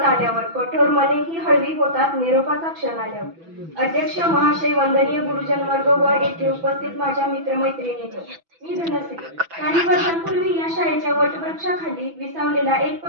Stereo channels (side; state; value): left; late; 6.0 ms